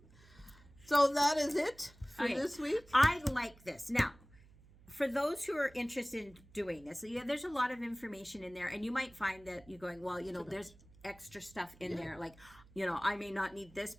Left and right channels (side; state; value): right; noise; hum, 24 dB below the sound